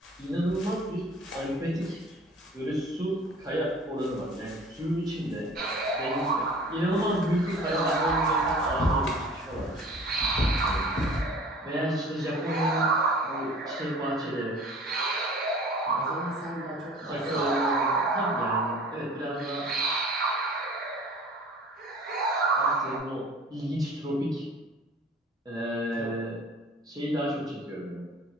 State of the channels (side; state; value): both; normal; correlation 0.46